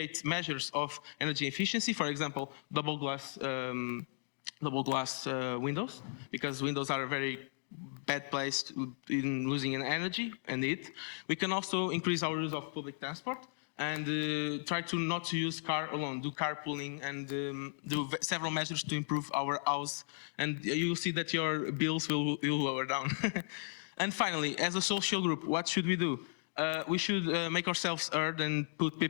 measures of energy efficiency, for example, double glass windows, because windows are a very bad place in losing energy and heat. We can also increase our use of public transport and try to not to use car alone, do carpooling and do several measures to improve our house, and you'll see that your bills will lower down. And finally, as a social group, what should we do? We should make ourselves heard and put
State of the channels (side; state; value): right; silent; digital silence